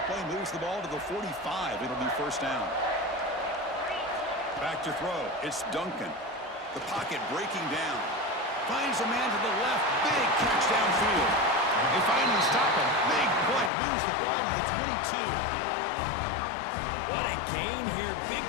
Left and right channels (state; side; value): drops out; right; at 13.7 s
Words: play moves the ball to the 45. It'll be first down. Back to throw. It's Duncan. The pocket breaking down. Finds a man to the left. Big catch downfield. They finally stop him. Big play. Moves the ball to the 22. What a gain here. Big